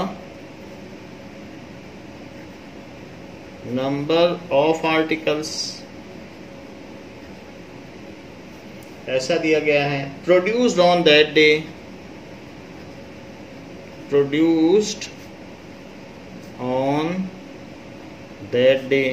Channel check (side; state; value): both; identical; correlation 1.00